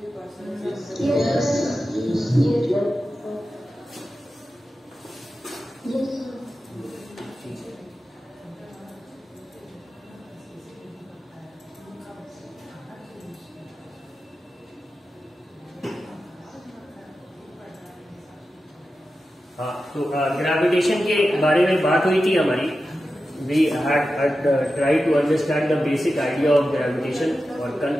Yes. हाँ, तो ग्रेविटेशन के बारे में बात हुई थी हमारी. We had tried to understand the basic idea of gravitation और कल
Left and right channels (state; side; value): normal; both; correlation 0.92